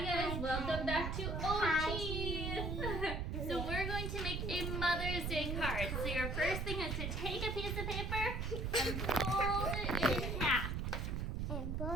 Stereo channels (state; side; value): noise; right; rumble, 1 dB below the sound